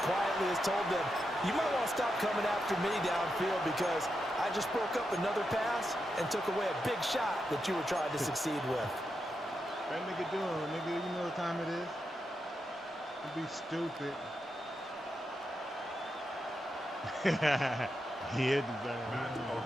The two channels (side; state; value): both; normal; correlation 0.86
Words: quietly has told them, you might want to stop coming after me downfield because I just broke up another pass and took away a big shot that you were trying to succeed with. That nigga doing, nigga, you know what time it is? Don't be stupid. On